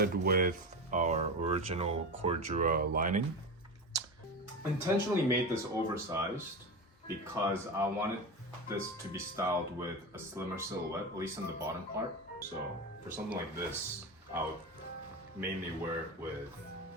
with our original Cordura lining. Intentionally made this oversized because I wanted this to be styled with a slimmer silhouette, at least in the bottom part. So for something like this, I would mainly wear it with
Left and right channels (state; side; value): normal; both; correlation 0.22